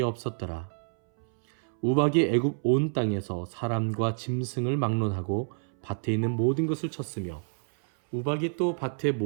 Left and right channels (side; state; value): left; silent; 59 dB below the other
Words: 없었더라. 우박이 애굽 온 땅에서 사람과 짐승을 막론하고 밭에 있는 모든 것을 쳤으며 우박이 또 밭의